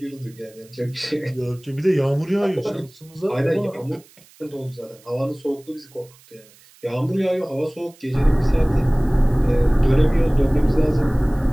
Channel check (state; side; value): noise; right; hiss, 27 dB below the sound